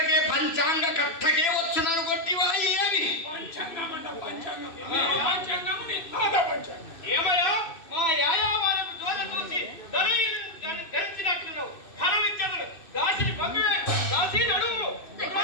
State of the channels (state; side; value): late; right; 2.6 ms